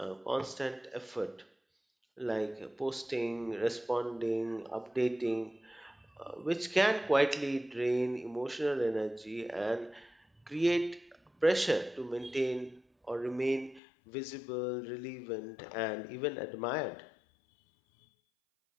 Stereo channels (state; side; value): drops out; right; at 13.8 s